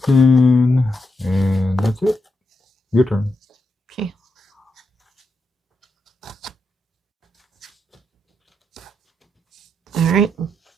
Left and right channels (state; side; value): normal; both; correlation 0.83